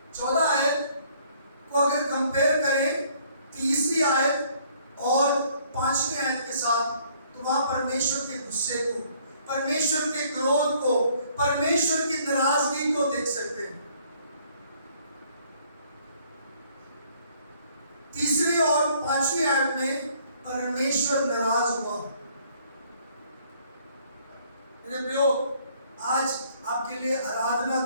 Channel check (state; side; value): inverted; both; correlation -0.62